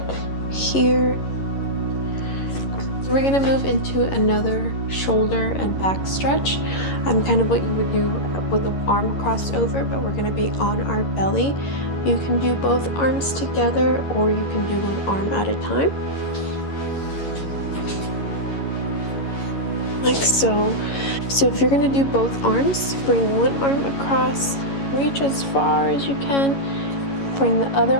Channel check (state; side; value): late; right; 11 ms